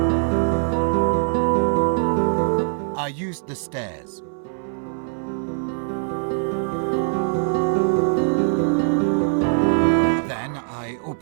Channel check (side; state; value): left; silent; 62 dB below the other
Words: I used the stairs. Then I